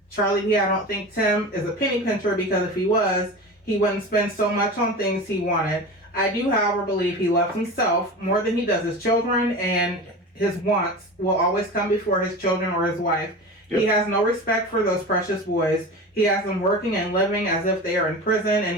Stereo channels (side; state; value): both; normal; correlation 0.31